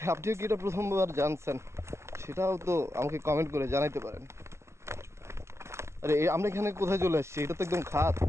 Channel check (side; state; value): left; late; 0.13 ms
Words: আপনিও কি এটা প্রথমবার জানছেন? সেটাও তো আমাকে কমেন্ট করে জানাইতে পারেন। আরে আমরা এখানে কোথায় চলে আসছি? এটা তো একদম খাত,